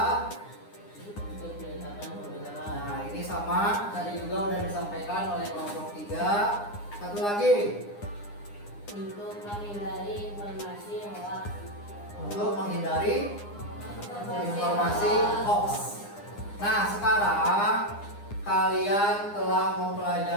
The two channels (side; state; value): right; late; 9.8 ms